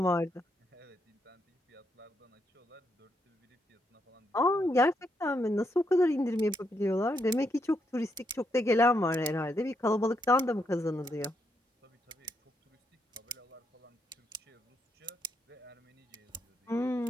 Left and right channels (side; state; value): both; normal; correlation 0.79